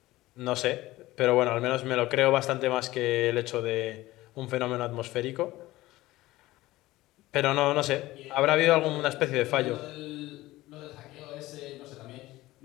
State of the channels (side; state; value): right; quieter; 17.7 dB